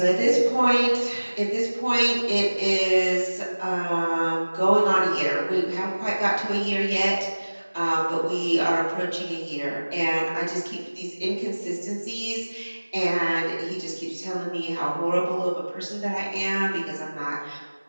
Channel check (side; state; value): both; inverted; correlation -1.00